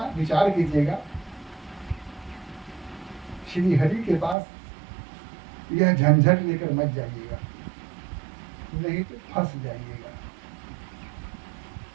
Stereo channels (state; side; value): drops out; left; at 4.4 s